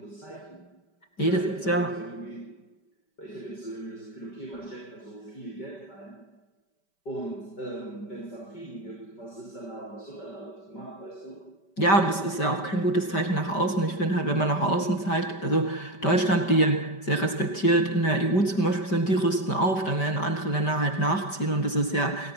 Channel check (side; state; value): right; late; 5.2 ms